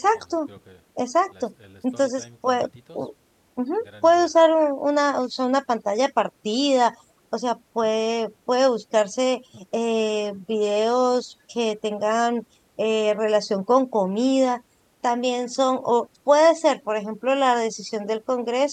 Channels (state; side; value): identical; both; correlation 1.00